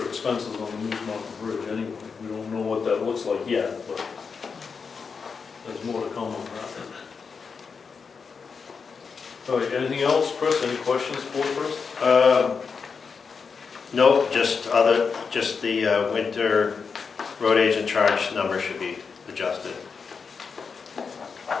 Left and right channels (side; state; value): right; quieter; 5.5 dB